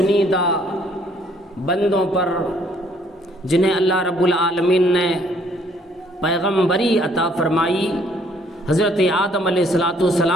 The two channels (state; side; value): normal; both; correlation 0.64